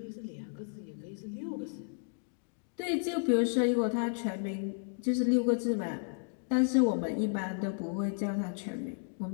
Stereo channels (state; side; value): silent; right; digital silence